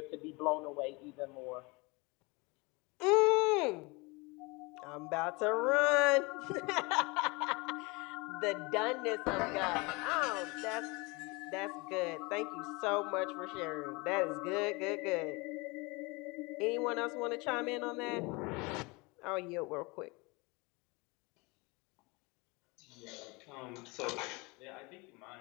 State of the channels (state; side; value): quieter; right; 26.5 dB